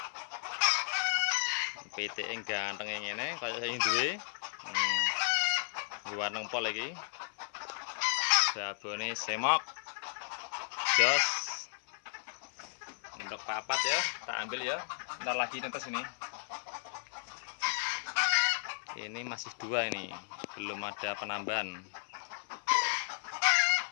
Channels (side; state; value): right; silent; 55 dB below the other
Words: PT ganteng ngene kaya sing duwe. Gua nempol lagi. Babone semok. Jos. Untuk papat ya, tak ambil ya. Ntar lagi netes ini. Ini masih 2 ini, belum ada penambahan.